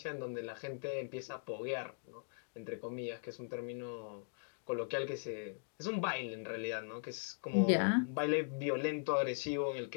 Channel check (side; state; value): right; silent; digital silence